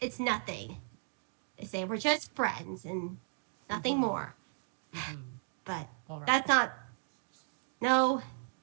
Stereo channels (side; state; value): left; silent; digital silence